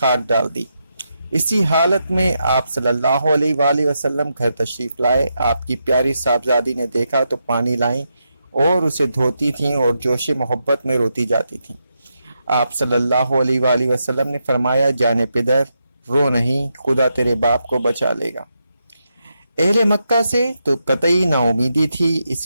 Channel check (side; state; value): both; inverted; correlation -0.84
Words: ڈال دی۔ اسی حالت میں آپ صلی اللہ علیہ وآلہ وسلم گھر تشریف لائے۔ آپ کی پیاری صاحبزادی نے دیکھا تو پانی لائیں اور اسے دھوتی تھیں اور جوش محبت میں روتی جاتی تھیں۔ آپ صلی اللہ علیہ وآلہ وسلم نے فرمایا، جانے پدر رو نہیں، خدا تیرے باپ کو بچا لے گا۔ اہل مکہ سے تو قطعی نا امیدی تھی،